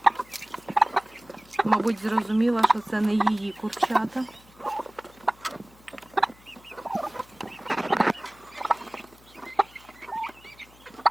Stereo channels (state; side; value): noise; left; hum, 26 dB below the sound